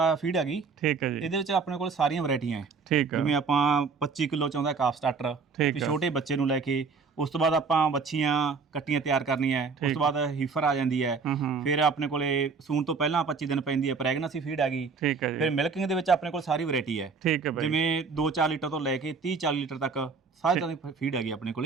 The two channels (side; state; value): left; quieter; 4.9 dB